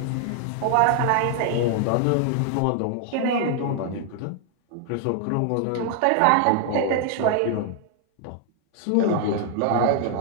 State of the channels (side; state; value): both; different; correlation 0.00